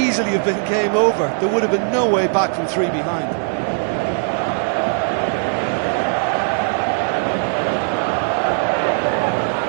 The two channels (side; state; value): left; silent; digital silence